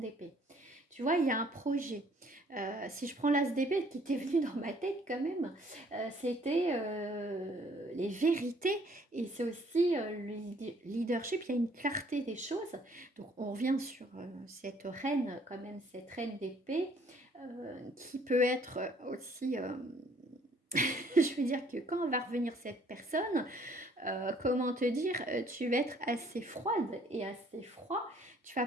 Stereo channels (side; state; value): both; normal; correlation 0.61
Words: d'épée. Tu vois, il y a un projet. Si je prends l'as d'épée qui était venu dans ma tête quand même, c'était les vérités et c'est aussi le leadership. Il y a une clarté des choses. Donc, on revient sur cette reine, quand même, cette reine d'épée qui peut être aussi. Je veux dire que quand va revenir cette personne, comment te dire, tu vas être assez froide et assez froid. Tu vas